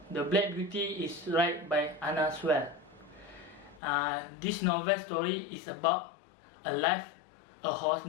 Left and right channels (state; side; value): drops out; right; at 3.8 s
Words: the Black Beauty is written by Anna Sewell. This novel story is about a horse